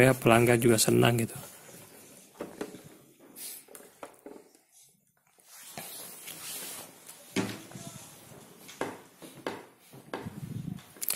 pelanggan juga senang gitu.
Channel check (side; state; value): both; identical; correlation 1.00